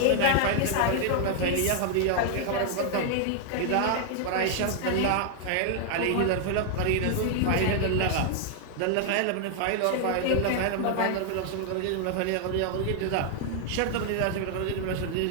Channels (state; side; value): different; both; correlation 0.00